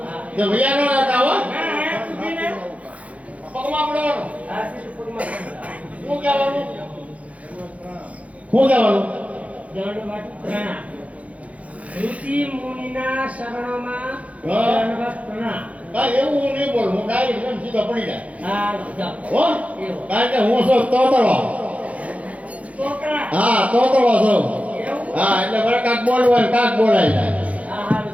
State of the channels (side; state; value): left; late; 0.066 ms